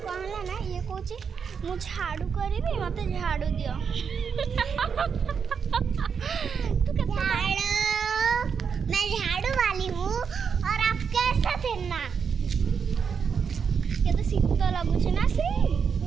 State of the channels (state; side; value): quieter; left; 6.4 dB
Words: ना ये कौची मु झाड़ू करी मत झाड़ू दियो मैं झाड़ू वाली हूँ और आप कैसा थे ना ये तो शीत लगुच ना श्री